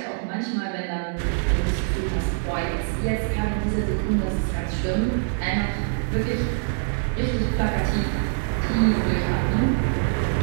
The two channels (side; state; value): left; silent; 60 dB below the other